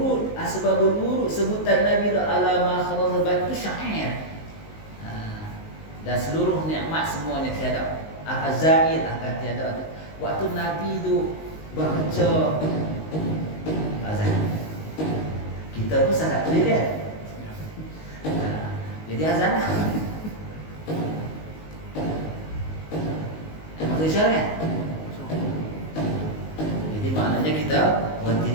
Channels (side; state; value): right; late; 19 ms